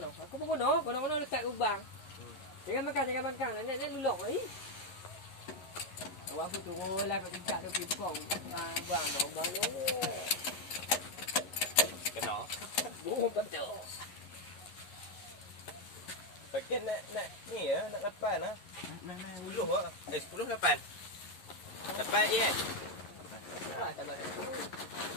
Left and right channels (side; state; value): right; late; 11 ms